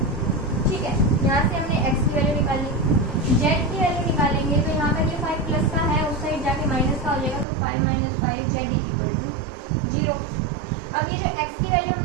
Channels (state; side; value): drops out; left; at 7.5 s